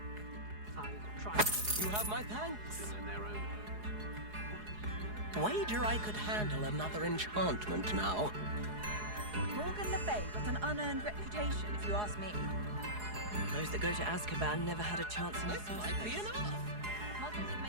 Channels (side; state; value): left; late; 4.8 ms